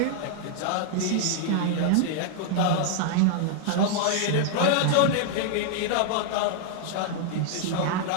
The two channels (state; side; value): different; both; correlation -0.01